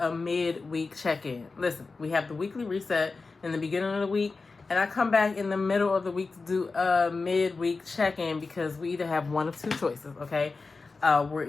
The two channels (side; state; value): right; quieter; 4.1 dB